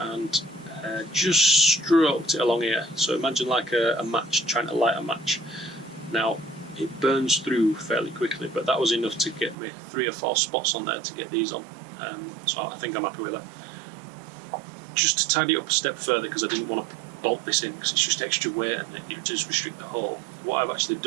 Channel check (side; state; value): left; drops out; at 9.6 s